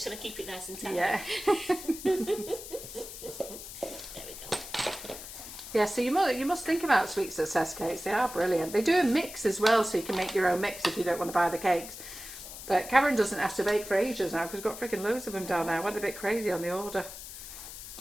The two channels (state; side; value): noise; left; hiss, 12 dB below the sound